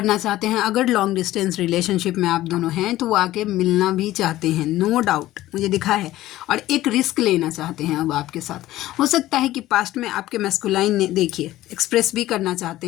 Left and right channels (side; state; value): right; quieter; 15.5 dB